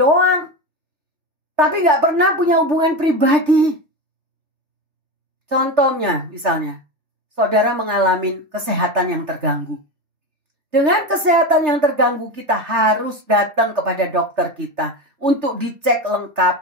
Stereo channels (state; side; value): late; left; 3.3 ms